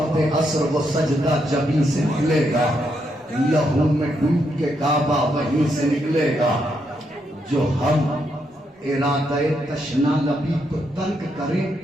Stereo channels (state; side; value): normal; both; correlation 0.79